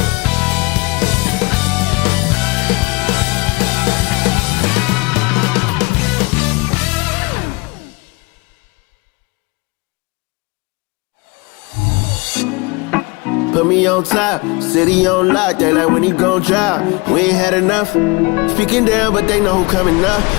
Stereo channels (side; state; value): right; quieter; 26.8 dB